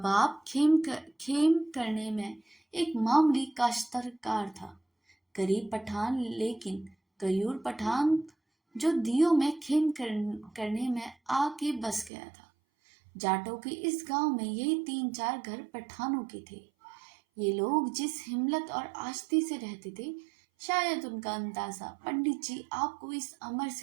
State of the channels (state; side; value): drops out; left; at 12.1 s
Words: खेम करने में एक मामूली काश्तकार था, गरीब पठान, लेकिन गयूर पठान जो दियों में करने में आके बस गया था। जाटों के इस गांव में यही 3-4 घर पठानों के थे। ये लोग जिस हिम्मत और आस्ती से रहते थे, शायद उनका अंदाजा पंडित जी आपको इस अमर